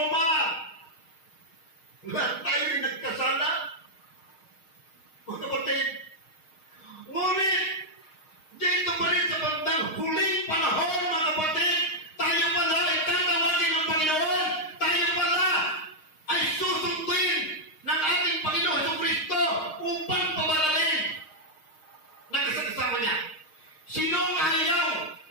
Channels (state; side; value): late; right; 6.4 ms